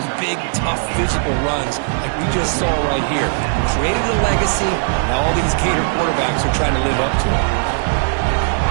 big, tough, physical runs like we just saw right here. Created a legacy, and all these Gator quarterbacks are trying to live up to it.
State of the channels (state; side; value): silent; left; 62 dB below the other